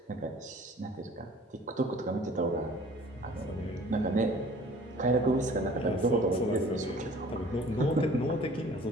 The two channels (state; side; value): normal; both; correlation 0.50